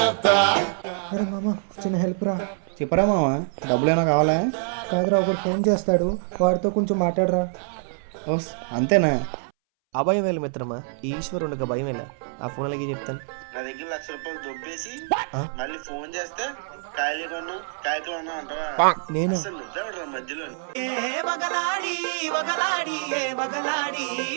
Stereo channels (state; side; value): silent; left; 62 dB below the other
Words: అరే మామ చిన్న హెల్ప్ రా. చెప్పరా మామ, డబ్బులేనా కావాలా? కాదురా, ఒకరు ఫోన్ చేస్తాడు, వాడితో కొంచెం మాట్లాడరా. ఓస్ అంతేనా? అభయం వేలు మిత్రమా, ఈశ్వరునికి భయం వేళ. ఆ ఫోన్ అలాగే చెప్తాను. నా దగ్గర ₹1,00,000 దొబ్బేసి మళ్ళీ ఫోన్ చేస్తే కాయలు కొను కాయకులు అన్నా అంటావా? నేను అసలు నిద్ర మధ్యలో